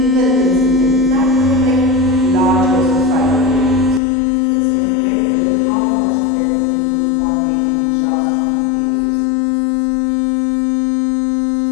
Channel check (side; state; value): right; drops out; at 4.0 s